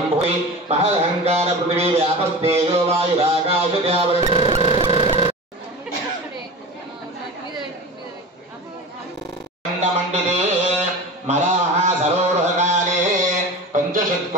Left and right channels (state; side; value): normal; both; correlation 0.31